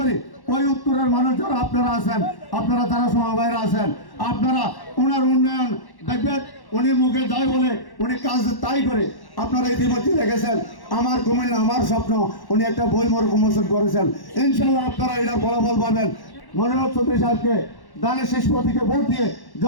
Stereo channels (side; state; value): right; late; 1.1 ms